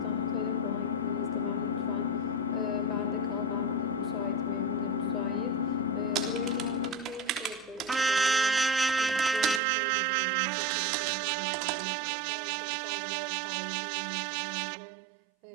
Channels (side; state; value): left; drops out; at 9.6 s